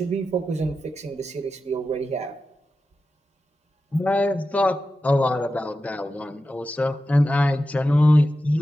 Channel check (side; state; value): both; normal; correlation 0.91